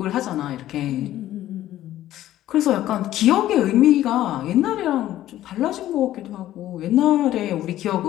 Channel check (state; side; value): quieter; right; 13.6 dB